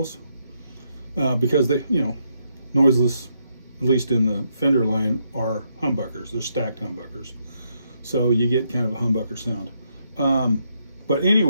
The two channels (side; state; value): both; inverted; correlation -0.78